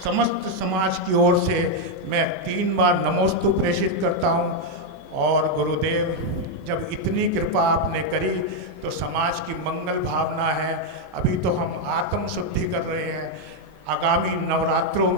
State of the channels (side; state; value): both; normal; correlation 0.01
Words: समस्त समाज की ओर से मैं 3 बार नमोस्तु प्रेषित करता हूँ। और गुरुदेव, जब इतनी कृपा आपने करी तो समाज की मंगल भावना है। अभी तो हम आत्म शुद्धि कर रहे हैं। आगामी नवरात्रों